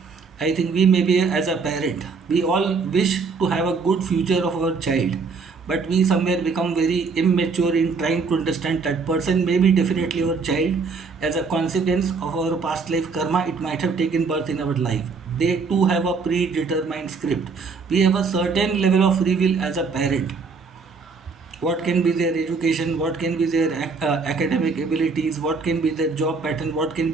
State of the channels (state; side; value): quieter; left; 4.7 dB